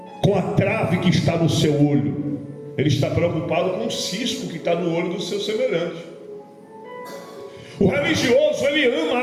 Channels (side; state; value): both; identical; correlation 1.00